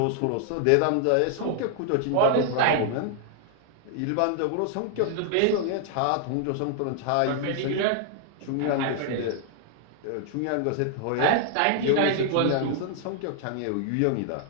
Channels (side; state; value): both; different; correlation 0.00